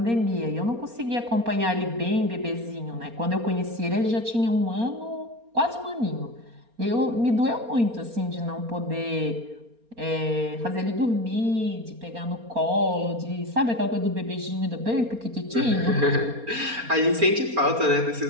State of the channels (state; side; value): late; left; 4.3 ms